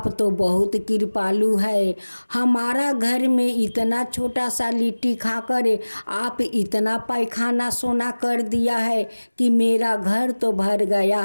तो बहुत कृपालु है, हमारा घर में इतना छोटा सा लिट्टी खाकर आप इतना पैखाना सोना कर दिया है कि मेरा घर तो भर गया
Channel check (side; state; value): both; inverted; correlation -1.00